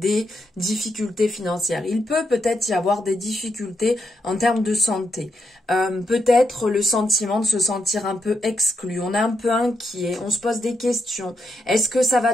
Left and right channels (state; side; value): normal; both; correlation 0.80